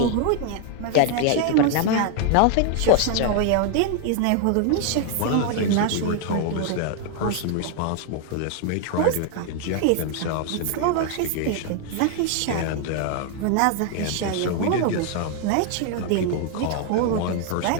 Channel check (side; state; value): both; different; correlation 0.00